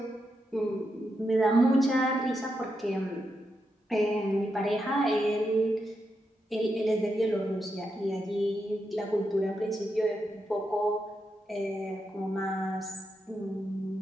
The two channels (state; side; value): normal; both; correlation 0.84